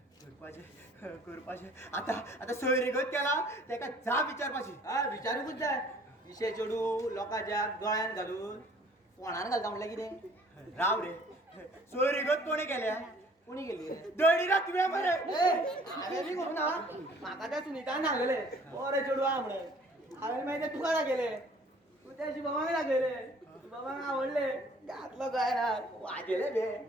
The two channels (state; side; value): normal; both; correlation 0.55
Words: करपाचे आता सोयरीगत केला तेका जाप विचारपाची. हा विचारूकूच जाय विशे चेडू लोकांच्या गळ्यान घालून फोणान घालता म्हणल्यार कितें राव रे सोयरीगत कोणी केल्या कोणी गेली दळीरा तुवें मरे. हांवें बी करूं ना म्हाका त्या सुनीतान सांगले बरे चेडू आहा म्हणून हांवें मागीर ते तुका दाखयले तू त्या शिवबाबाक दाखयले शिवबाबाक आवडले घातलो गळ्यान वाजयले बे